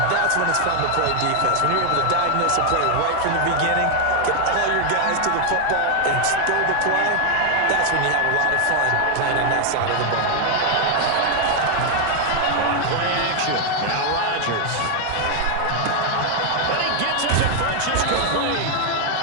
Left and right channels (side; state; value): both; different; correlation 0.00